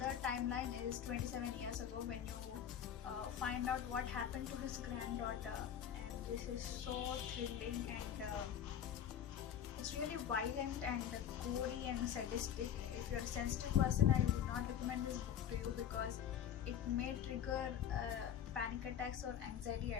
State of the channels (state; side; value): quieter; right; 9.2 dB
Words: timeline is 27 years ago when you find out what happened to his granddaughter. And this is so thrilling, and it's really violent and gory and sadistic. If you're a sensitive person, I would not recommend this book to you because it may trigger panic attacks or anxiety